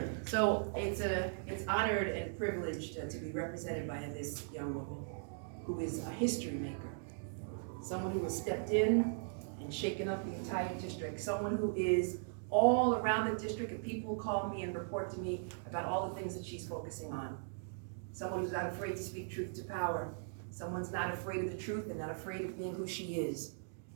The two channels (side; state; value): left; silent; digital silence